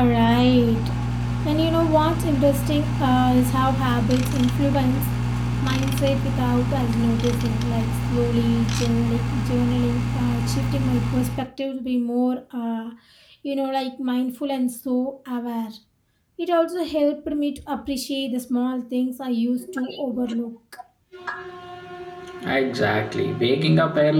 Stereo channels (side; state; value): both; identical; correlation 1.00